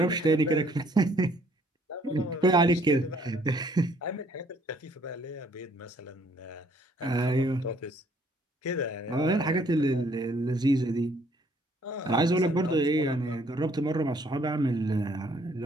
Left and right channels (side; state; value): both; normal; correlation 0.63